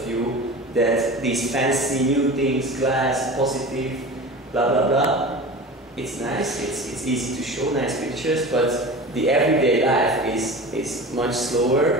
view that these fancy new things, glass, positive, blah blah blah, it's nice, it's easy to show nice pictures, but the everyday life is much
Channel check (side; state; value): both; normal; correlation 0.33